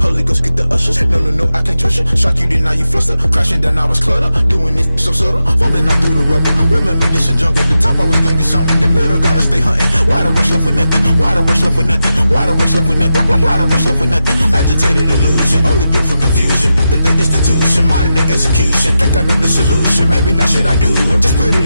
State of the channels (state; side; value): inverted; both; correlation -0.90